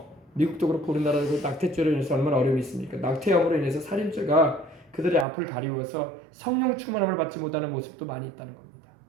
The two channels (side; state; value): left; drops out; at 5.2 s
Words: 미국도 그렇고 우리나라도 낙태죄로 인해서 얼마나 어려움이 있습니까? 낙태암으로 인해서 살인죄가 그들의 앞을 가리워서 성령 충만함을 받지 못하는 모습도 많이 있다는 겁니다.